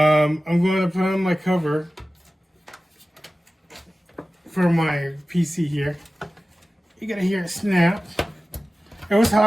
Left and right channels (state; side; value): normal; both; correlation 0.96